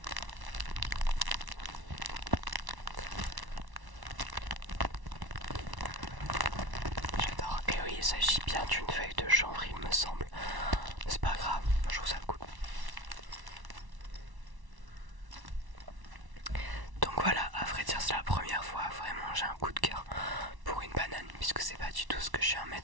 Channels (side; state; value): left; late; 1.1 ms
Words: J'adore. Et oui, il s'agit bien d'une feuille de chanvre, il me semble. C'est pas grave, je trouve ça cool. Donc voilà, à vrai dire, c'est la première fois vraiment j'ai un coup de cœur pour une banane, puisque c'est pas du tout ce que je suis un